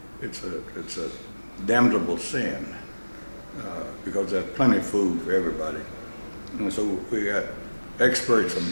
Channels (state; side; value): inverted; both; correlation -1.00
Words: It's a damnable sin because there's plenty of food for everybody. And so we got experts from